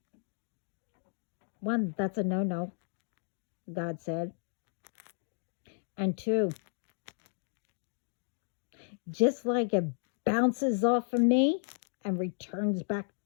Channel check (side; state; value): right; silent; digital silence